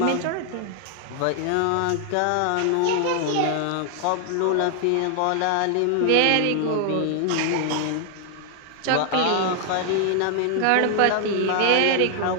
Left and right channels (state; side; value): different; both; correlation 0.00